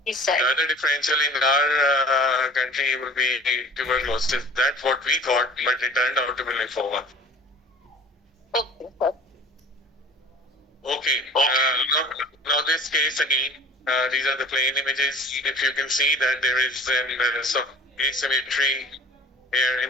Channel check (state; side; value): normal; both; correlation 0.45